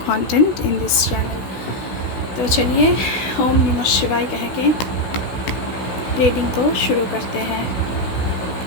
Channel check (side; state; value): right; late; 16 ms